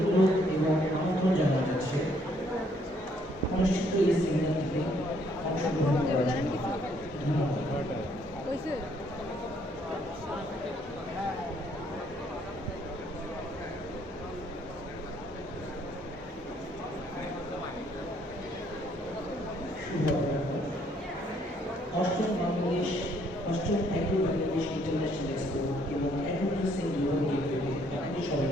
এবং আমন্ত্রণ জানানো যাচ্ছে অনুষ্ঠিত এই সেমিনারটিতে অংশগ্রহণ করার জন্য। ধন্যবাদ। অষ্টম অ্যাগ্রো বাংলাদেশ ইন্টারন্যাশনাল এক্সপো এবং অ্যাগ্রোপ্রসেসিং গ্লোবাল গেটওয়েতে আপনাদের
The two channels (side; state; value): both; normal; correlation 0.67